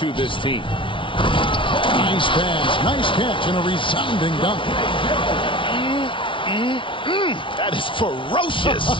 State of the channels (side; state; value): right; late; 0.25 ms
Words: this team. Nice pass, nice catch, and a resounding dunk. That is